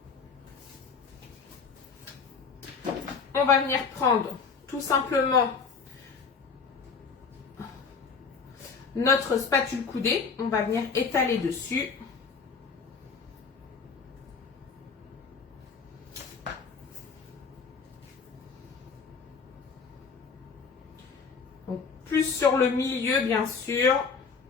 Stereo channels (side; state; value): right; quieter; 5.3 dB